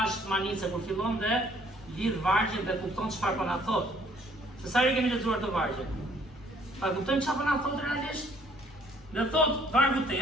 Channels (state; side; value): normal; both; correlation 0.61